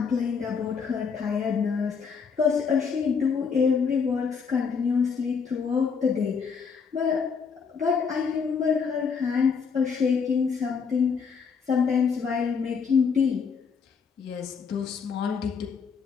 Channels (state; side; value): quieter; right; 5.9 dB